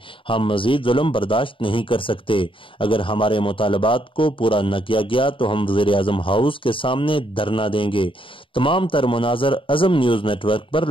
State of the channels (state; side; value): late; right; 0.25 ms